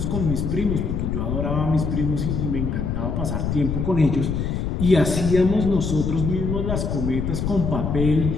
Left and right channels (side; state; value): left; noise; rumble, 1 dB below the sound